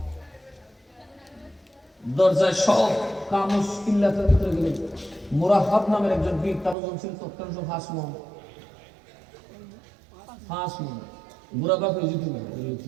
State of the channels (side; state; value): left; drops out; at 6.8 s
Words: দরজায় সব কামস কিল্লাতের ভিতরে গেলেন। মুরাহাব নামের একজন বীর, তার ওজন ছিল তৎকালীন 5 মণ। মুরাহাব